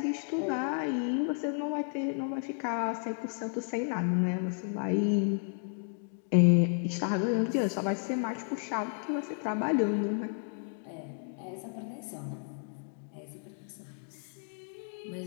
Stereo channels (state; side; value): silent; right; 56 dB below the other